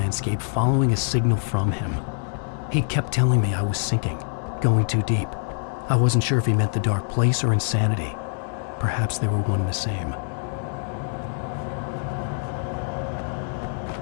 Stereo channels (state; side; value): silent; right; 62 dB below the other